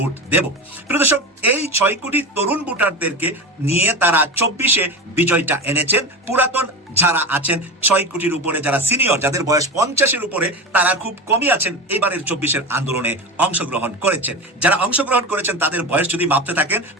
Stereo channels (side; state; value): both; normal; correlation 0.25